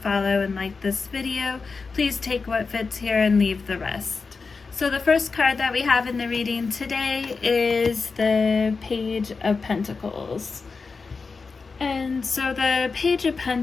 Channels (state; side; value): quieter; right; 4.6 dB